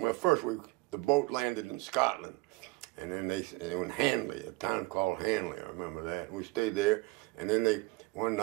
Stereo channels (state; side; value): quieter; left; 22.1 dB